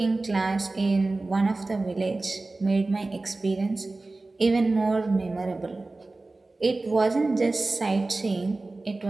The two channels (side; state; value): left; quieter; 3.2 dB